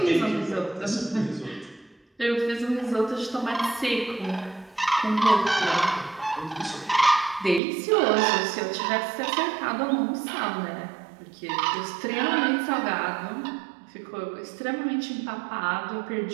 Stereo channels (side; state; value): left; drops out; at 7.6 s